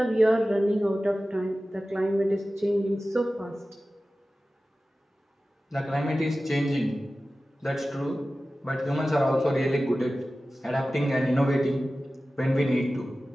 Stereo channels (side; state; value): both; normal; correlation 0.95